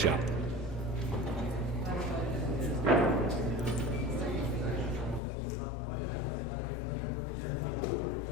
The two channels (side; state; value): right; drops out; at 5.2 s